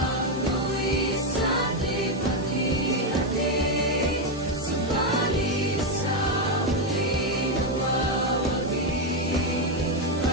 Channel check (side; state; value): both; normal; correlation 0.05